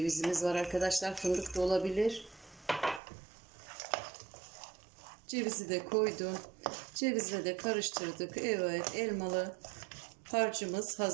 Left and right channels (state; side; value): drops out; left; at 3.0 s